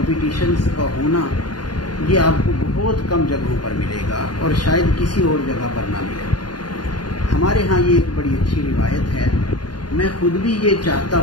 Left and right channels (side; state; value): right; late; 0.70 ms